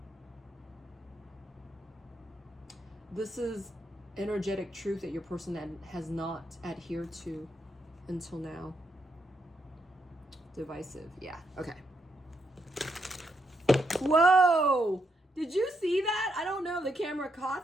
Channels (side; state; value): both; normal; correlation 0.79